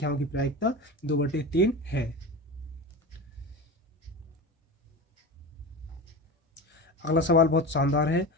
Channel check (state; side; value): normal; both; correlation 0.28